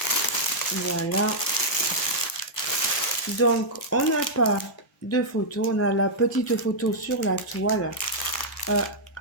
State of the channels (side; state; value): both; normal; correlation -0.07